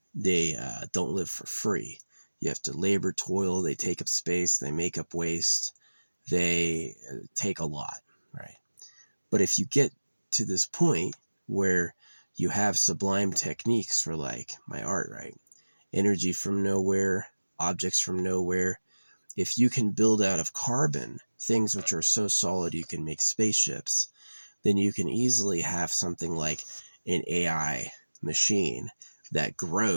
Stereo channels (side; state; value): both; inverted; correlation -1.00